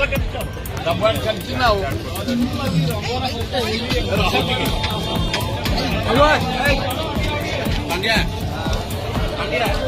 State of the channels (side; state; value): both; identical; correlation 1.00